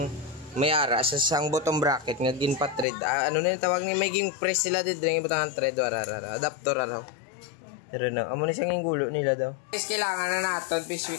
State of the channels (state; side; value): drops out; right; at 2.9 s